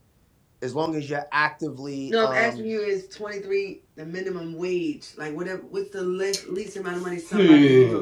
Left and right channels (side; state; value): both; identical; correlation 1.00